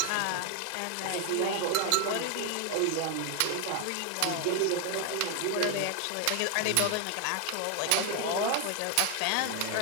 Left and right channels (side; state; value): both; different; correlation 0.01